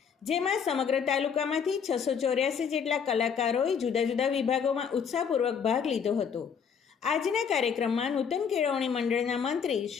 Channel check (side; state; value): right; quieter; 7.0 dB